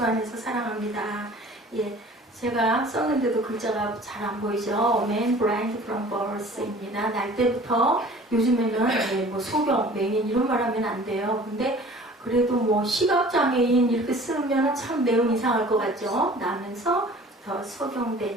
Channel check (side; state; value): both; normal; correlation 0.47